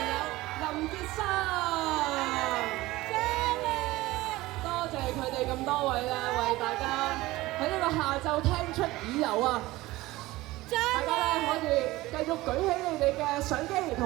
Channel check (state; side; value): quieter; left; 18.7 dB